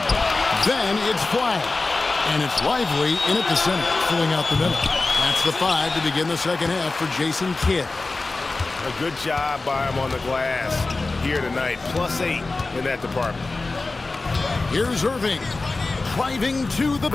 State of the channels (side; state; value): right; quieter; 3.5 dB